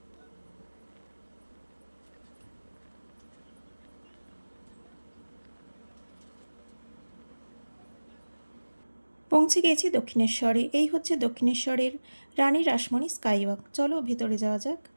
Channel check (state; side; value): inverted; both; correlation -1.00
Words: পৌঁছে গেছি দক্ষিণেশ্বরে। এই হচ্ছে দক্ষিণেশ্বরের রানী রাসমণি স্কাইওয়াক। চলো ভেতরে যাওয়া যাক।